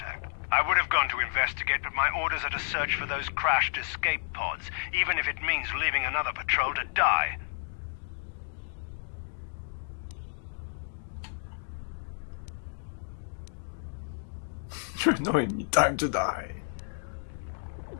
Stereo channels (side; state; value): right; silent; digital silence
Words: I would have gone to investigate, but my orders are to search for those crashed escape pods, even if it means leaving another patrol to die. You're annoying me. Time to die.